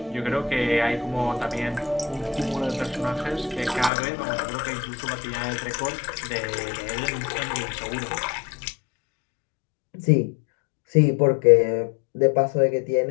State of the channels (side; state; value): right; drops out; at 3.9 s